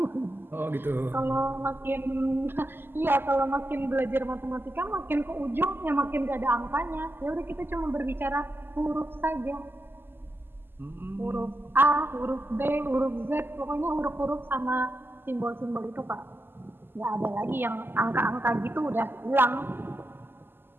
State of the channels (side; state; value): left; late; 0.10 ms